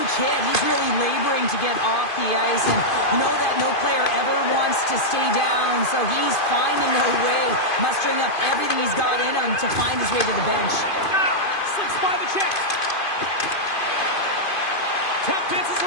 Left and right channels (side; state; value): right; late; 2.5 ms